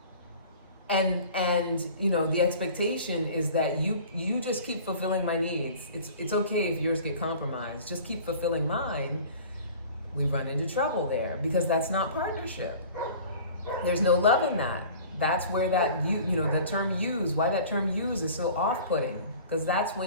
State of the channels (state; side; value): inverted; both; correlation -0.44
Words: and the expectation is that you just keep fulfilling my needs, it's okay if yours get compromised, just keep fulfilling mine, we run into trouble there, because that's not partnership. There's no love in that. That's where the term use, why that term use is so off-putting, because that's